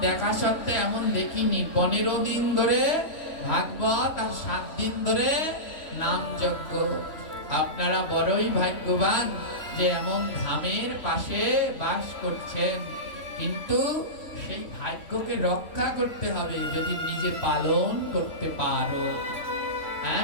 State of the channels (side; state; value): right; late; 3.1 ms